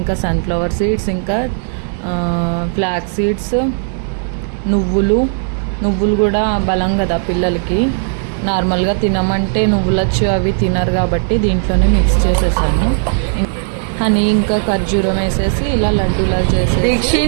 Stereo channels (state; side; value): silent; left; digital silence